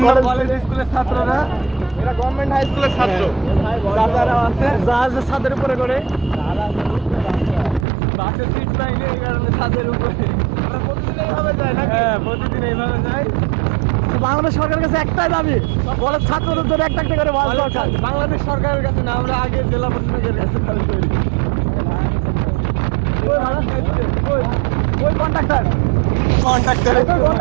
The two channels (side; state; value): left; drops out; at 7.9 s